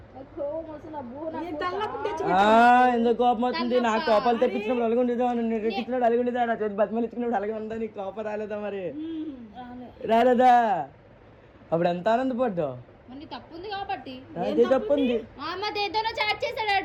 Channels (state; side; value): identical; both; correlation 1.00